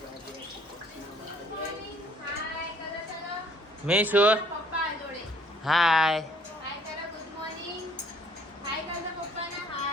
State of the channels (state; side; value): normal; both; correlation 0.61